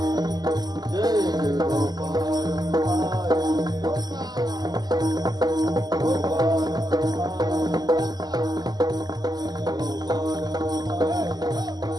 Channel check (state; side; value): late; left; 0.20 ms